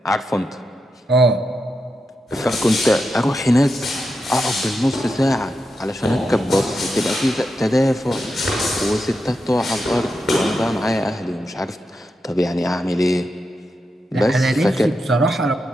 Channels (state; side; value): normal; both; correlation 0.87